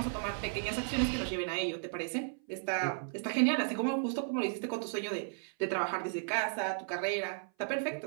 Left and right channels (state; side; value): silent; left; 55 dB below the other